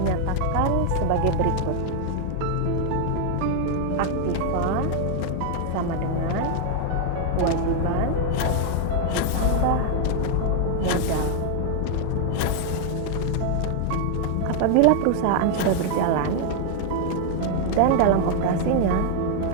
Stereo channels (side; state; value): both; different; correlation 0.00